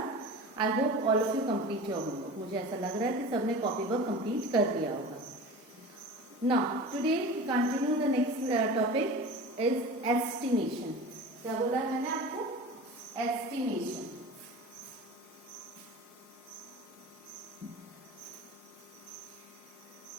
I hope all of you complete your homework. मुझे ऐसा लग रहा है कि सबने कॉपी वर्क complete कर दिया होगा. Now, today we continue the next topic is estimation. क्या बोला है मैंने आपको? Estimation.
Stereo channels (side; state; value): both; normal; correlation 0.35